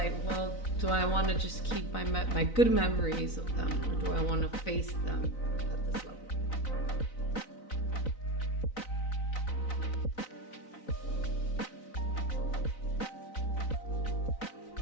well, do I want to just keep my good memories of them, or do I want to face them at this level?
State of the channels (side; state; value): right; late; 4.0 ms